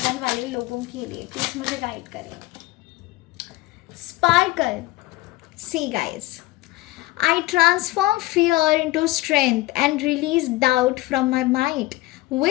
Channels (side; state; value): right; quieter; 18.7 dB